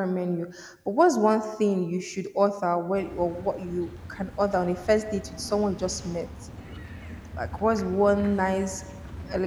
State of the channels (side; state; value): both; identical; correlation 1.00